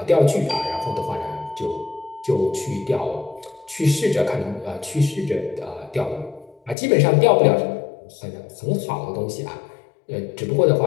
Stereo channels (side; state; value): right; drops out; at 6.8 s